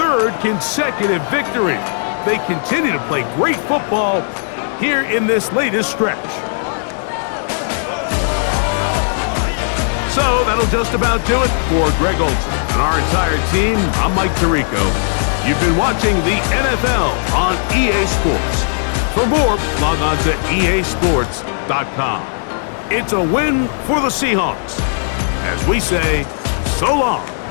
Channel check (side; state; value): right; silent; 66 dB below the other